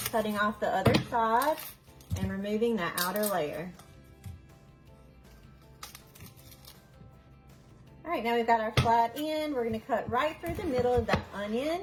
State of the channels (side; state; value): both; identical; correlation 1.00